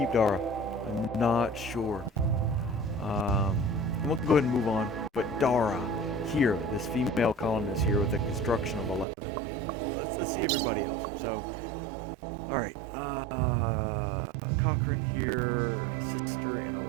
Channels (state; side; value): drops out; left; at 9.1 s